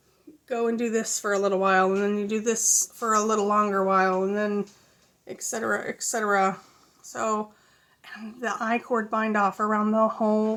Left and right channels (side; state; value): both; identical; correlation 1.00